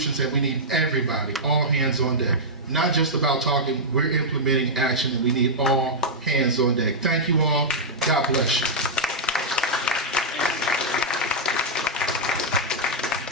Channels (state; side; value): normal; both; correlation -0.08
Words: and we need everybody, all hands on deck. Not just about talking, we're implementing action and we need all hands on deck. Thank you all. God bless you.